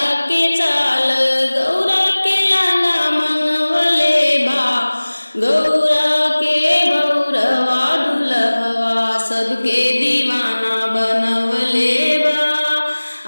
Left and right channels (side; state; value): both; inverted; correlation -1.00